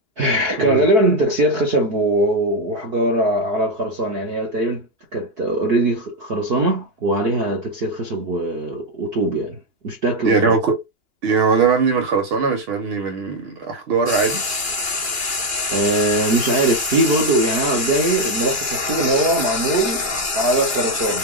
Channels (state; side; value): late; left; 2.9 ms